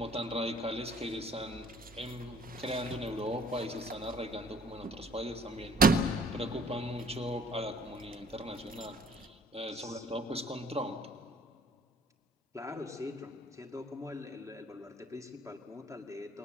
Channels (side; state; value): both; normal; correlation 0.56